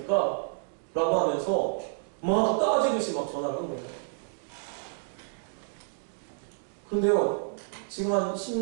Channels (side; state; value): left; silent; 58 dB below the other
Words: 라고 하면서 막 따지듯이 막 전화를 한 거예요. 그런데요, 지금 한